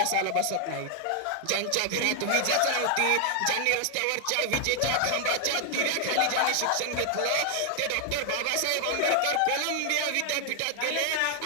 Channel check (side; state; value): both; different; correlation 0.00